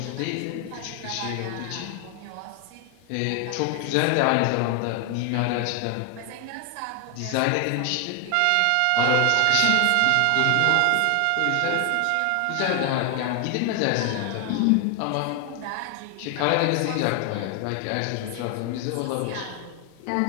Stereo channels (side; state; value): both; different; correlation 0.01